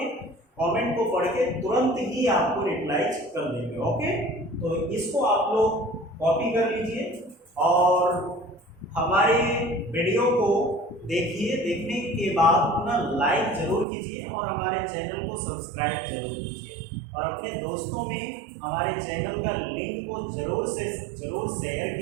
कमेंट को पढ़ के तुरंत ही आपको रिप्लाई कर देंगे। ओके, तो इसको आप लोग कॉपी कर लीजिए और हमारे वीडियो को देखिए, देखने के बाद अपना लाइक जरूर कीजिए और हमारे चैनल को सब्सक्राइब जरूर कीजिए और अपने दोस्तों में हमारे चैनल का लिंक को जरूर शेयर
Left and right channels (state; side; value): drops out; left; at 13.9 s